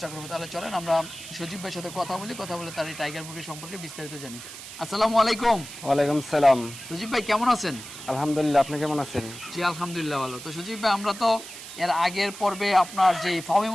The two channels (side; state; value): right; noise; hiss, 13 dB below the sound